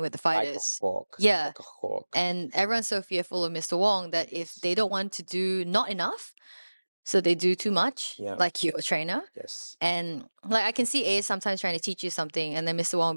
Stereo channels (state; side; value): inverted; both; correlation -1.00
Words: with the Like a fighters. hawk. Yeah. Like a hawk. And everyone's so fearful of Mr. Wong that if they don't want to do not enough, so they do too much, Yeah. like your trainer. Yes. And like I can see A sometimes trying to teach you something, and then Mr. Wong will